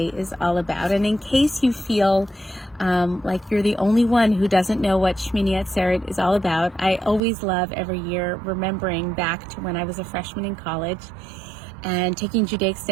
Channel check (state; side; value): drops out; left; at 7.2 s